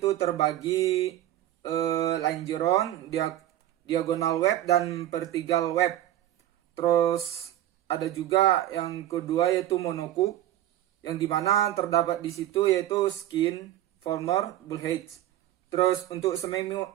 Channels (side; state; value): left; quieter; 13.2 dB